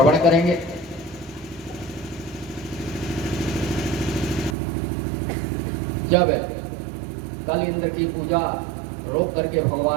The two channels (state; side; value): drops out; left; at 4.5 s